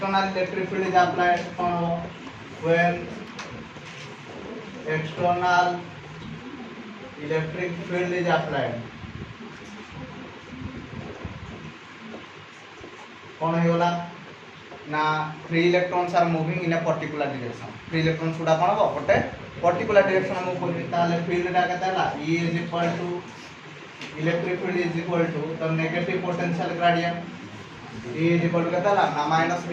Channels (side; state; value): both; identical; correlation 1.00